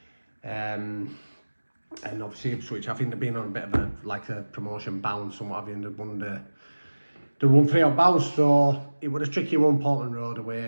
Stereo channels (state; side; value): inverted; both; correlation -1.00